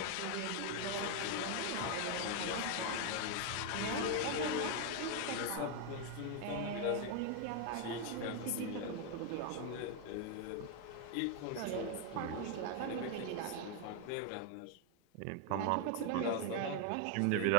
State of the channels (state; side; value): different; both; correlation 0.00